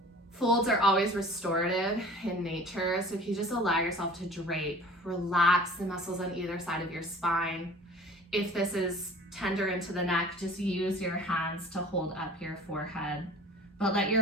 Folds are always restorative in nature, so if you just allow yourself to drape, relax the muscles on either side of your spine. If this is tender into the neck, just use your hands to hold up your forehead, but let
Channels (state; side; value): normal; both; correlation 0.46